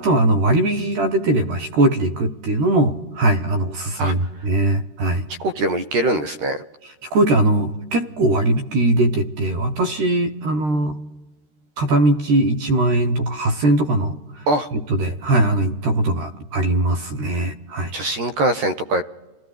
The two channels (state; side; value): late; left; 13 ms